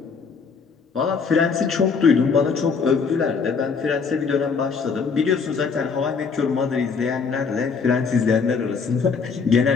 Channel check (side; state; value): right; quieter; 5.4 dB